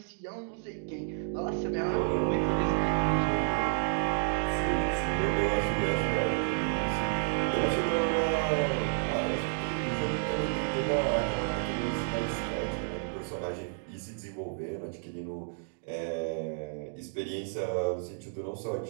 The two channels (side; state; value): left; silent; digital silence